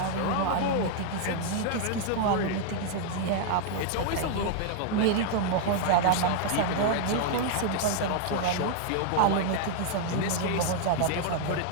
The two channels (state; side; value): different; both; correlation 0.00